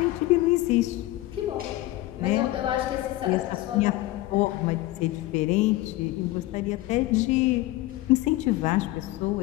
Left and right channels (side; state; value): right; quieter; 17.3 dB